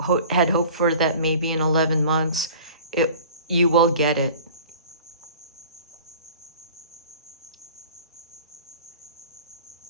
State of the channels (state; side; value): inverted; both; correlation -0.44